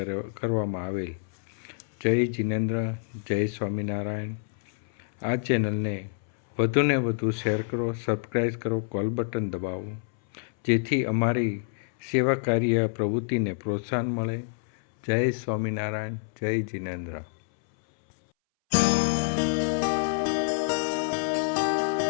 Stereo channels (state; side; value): silent; right; 60 dB below the other